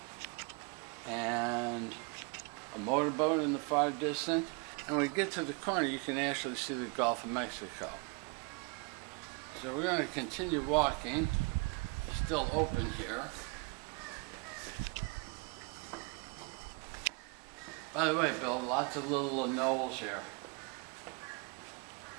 and a motorboat in the far distance. And when we get to the corner, you can actually see the Gulf of Mexico. So we're going to continue walking. It's still open here. By the way, Bill, lots of little knolls here.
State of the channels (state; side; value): quieter; left; 33.1 dB